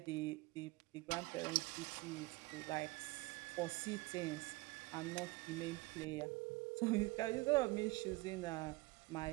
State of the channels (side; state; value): left; quieter; 22.8 dB